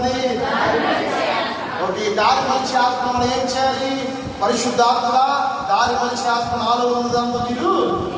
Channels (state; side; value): identical; both; correlation 1.00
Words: ఒకటి దారి మలిచే ఆత్మ. మనం ఏం చేయాలి? పరిశుద్ధాత్మ దారి మలిచే ఆత్మ నాలో ఉన్నదంతా మీరు